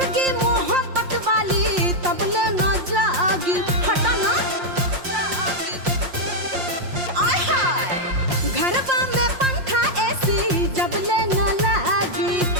मोहब्बत वाली तब ले न जागी। हटा ना आय हाय, घरवा में पंखा ऐसी जब ले न लागी,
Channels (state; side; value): late; left; 5.6 ms